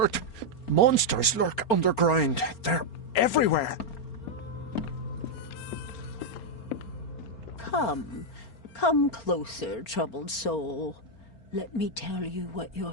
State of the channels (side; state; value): right; late; 4.4 ms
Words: Monsters lurk underground. They're everywhere. Come closer, troubled soul. Let me tell you what your